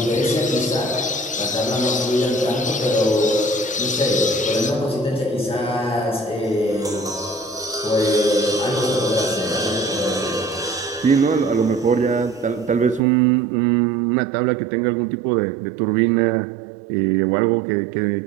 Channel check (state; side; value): drops out; left; at 13.0 s